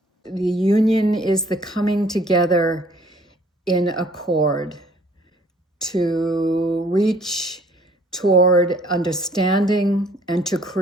The union is the coming together in accord to reach toward understanding and to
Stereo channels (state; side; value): normal; both; correlation 0.58